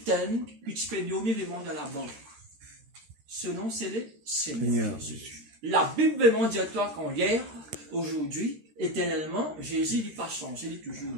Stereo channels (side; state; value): left; late; 13 ms